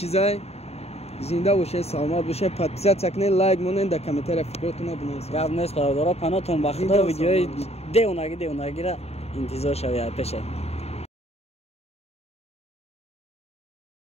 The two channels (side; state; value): right; late; 0.30 ms